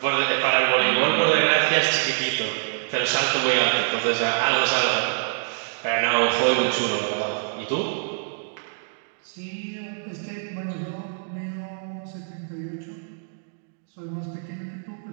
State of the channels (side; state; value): left; silent; digital silence